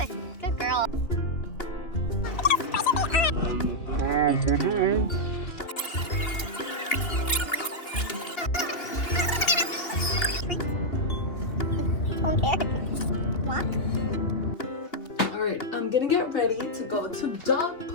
good girl. Alright, I'm gonna get ready to go to dog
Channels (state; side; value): late; right; 2.8 ms